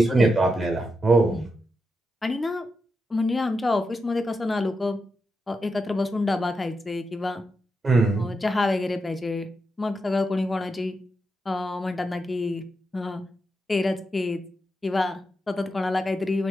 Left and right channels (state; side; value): normal; both; correlation 0.86